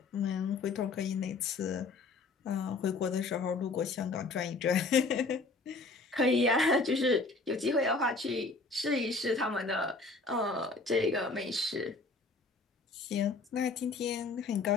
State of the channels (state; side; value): quieter; right; 3.7 dB